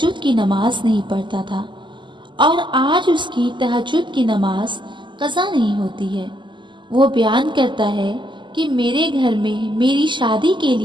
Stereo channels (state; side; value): late; left; 0.23 ms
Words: کی نماز نہیں پڑھتا تھا اور آج اس کی تہجد کی نماز قضا نہیں ہوتی ہے۔ وہ بیان کرتا ہے کہ میرے گھر میں میری شادی کے